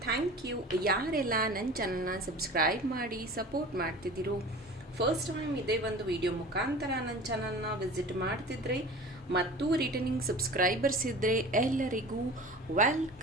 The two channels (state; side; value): normal; both; correlation 0.38